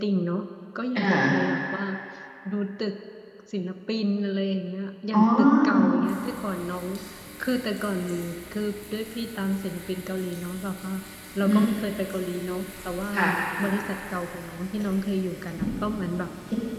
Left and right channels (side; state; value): both; identical; correlation 1.00